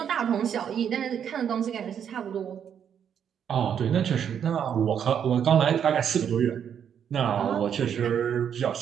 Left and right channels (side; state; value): left; quieter; 8.4 dB